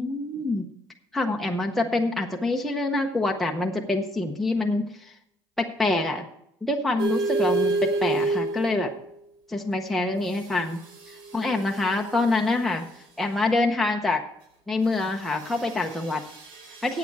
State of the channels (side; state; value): both; normal; correlation 0.71